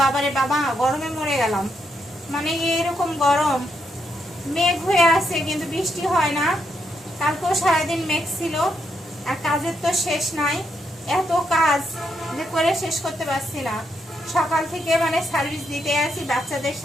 বাবারে বাবা, গরমে মরে গেলাম। মানে এরকম গরম, মেঘ হয়ে আছে কিন্তু বৃষ্টি হয় না। কালকেও সারাদিন মেঘ ছিল, আর কাজের তো শেষ নাই। এত কাজ যে করে শেষ করতে পারছি না। সকাল থেকে মানে সার্ভিস দিতে আসি বাচ্চাদের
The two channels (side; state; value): both; normal; correlation 0.79